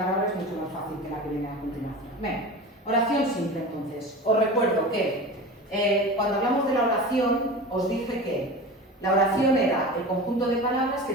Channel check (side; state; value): both; normal; correlation 0.32